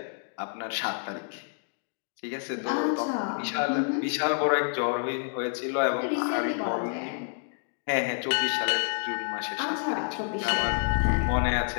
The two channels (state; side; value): silent; right; digital silence